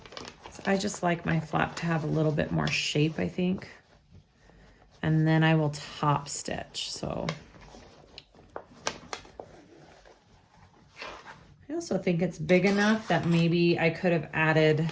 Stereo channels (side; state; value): both; identical; correlation 1.00